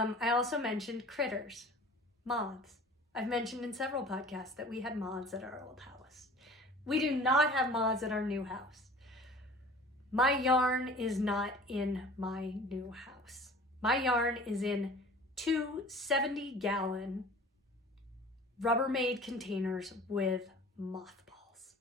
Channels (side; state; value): both; normal; correlation 0.44